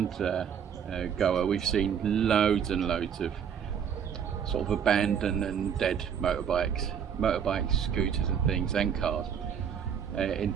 Goa, we've seen loads and loads of sort of abandoned and dead motorbikes, scooters and things, and cars. In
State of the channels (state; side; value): quieter; left; 7.9 dB